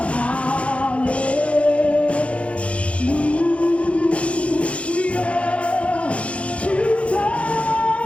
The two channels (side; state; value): right; late; 0.062 ms